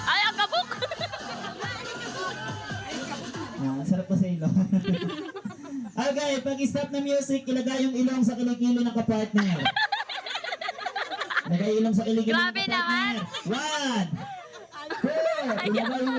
Ay, ang kabuk! Sarap pa sa ilong. Okay, pag stop na music, ilagay yung ilong sa kilikili ng kapartner. Ilagay ilong sa kilikili ng Grabe naman. kapartner. 1, 2, ilagay yung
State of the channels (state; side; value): identical; both; correlation 1.00